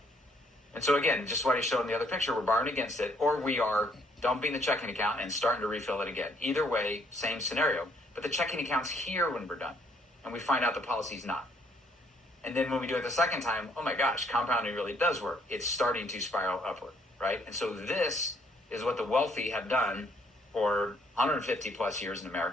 And so again, just what I showed in the other picture, we're borrowing against it, or we are dumping the checking account and starting to refill it again. Either way, same scenario. But the checking account's here when we're done, and we find out the policy's not. And then when we do it the second time, oh my gosh, compounding really does work. It's starting to spiral upward, right? And so this is what the wealthy have done for 150 plus years in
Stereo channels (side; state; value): both; normal; correlation 0.67